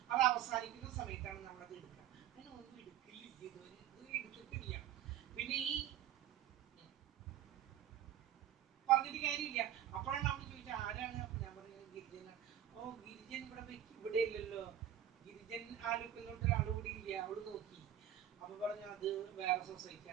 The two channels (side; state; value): left; quieter; 10.9 dB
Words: അത് അവസാനിക്കുന്ന സമയത്താണ് നമ്മളത് എടുക്കുക. അങ്ങനെ ഒന്നും എടുക്കില്ല, ഇതുവരെ എടുത്തിട്ടില്ല. പിന്നെ ഈ പറഞ്ഞിട്ട് കാര്യമില്ല. അപ്പോഴാണ് അവൾ ചോദിച്ചത് ആരാണ്. അപ്പൊ ഞാൻ പറഞ്ഞത് ഗിരിജനാണ്. ഓ, ഗിരിജൻ ഇവിടെ ഇല്ലല്ലോ, ഗിരിജൻ ആലുക്കല്ലോട്ട് ഒരാൾ കൂടി ഇല്ല. അവള് നോക്കി, അപ്പൊ പറഞ്ഞു അത് വേറെ